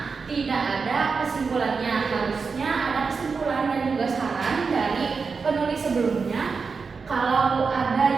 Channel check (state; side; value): quieter; left; 5.0 dB